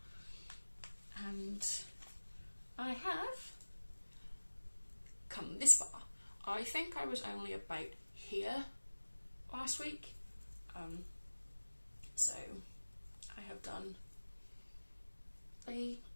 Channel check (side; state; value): both; inverted; correlation -1.00